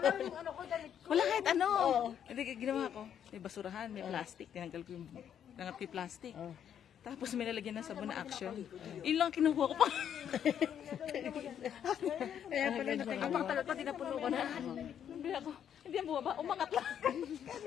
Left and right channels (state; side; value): quieter; right; 9.1 dB